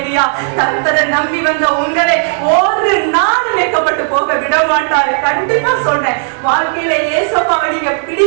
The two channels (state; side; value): silent; left; 60 dB below the other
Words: கர்த்தரை நம்பி வந்த உங்களை ஒரு நாள் வெட்கப்பட்டு போக விட மாட்டாரு. கண்டிப்பா சொல்றேன், வாழ்க்கையில ஏசப்பாவை நீங்க